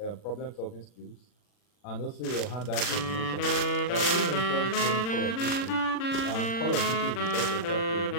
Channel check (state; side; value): late; right; 40 ms